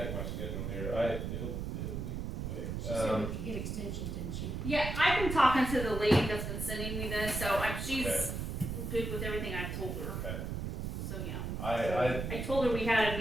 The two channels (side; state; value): right; noise; rumble, 4 dB below the sound